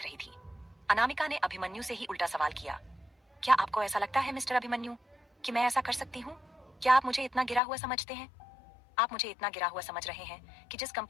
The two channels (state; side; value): drops out; right; at 7.6 s